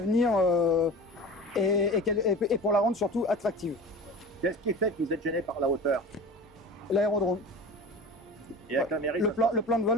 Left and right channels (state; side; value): normal; both; correlation 0.35